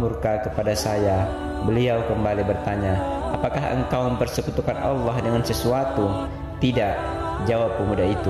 murka kepada saya." Beliau kembali bertanya, "Apakah engkau mempersekutukan Allah dengan sesuatu?" "Tidak," jawab pemuda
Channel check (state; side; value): identical; both; correlation 1.00